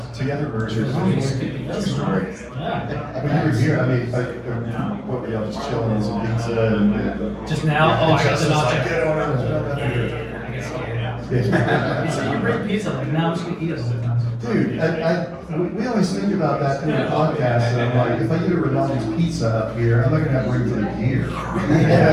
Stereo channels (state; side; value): identical; both; correlation 1.00